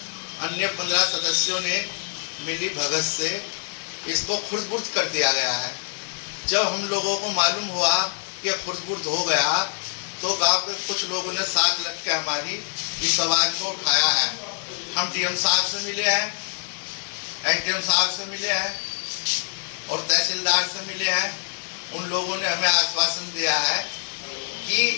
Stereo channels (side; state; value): right; silent; digital silence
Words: अन्य 15 सदस्यों ने मिली भगत से इसको खुर्द-बुर्द कर दिया गया है। जब हम लोगों को मालूम हुआ कि खुर्द-बुर्द हो गया तो गांव के कुछ लोगों ने साथ लग के हमारी इस आवाज को उठाया है। हम डीएम साहब से मिले हैं, एसडीएम साहब से मिले हैं और तहसीलदार से मिले हैं। उन लोगों ने हमें आश्वासन दिया है कि